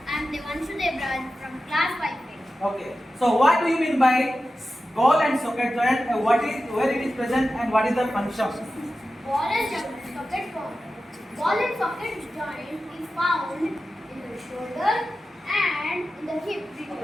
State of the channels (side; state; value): both; normal; correlation 0.93